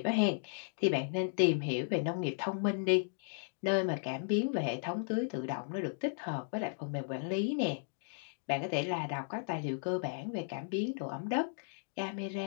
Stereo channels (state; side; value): silent; right; digital silence